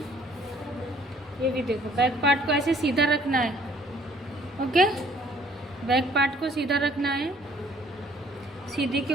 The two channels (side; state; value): both; normal; correlation 0.59